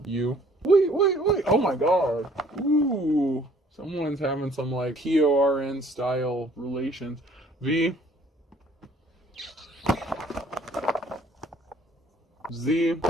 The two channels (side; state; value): both; normal; correlation 0.57